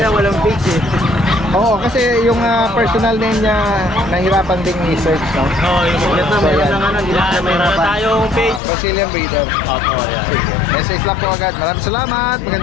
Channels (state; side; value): drops out; right; at 8.6 s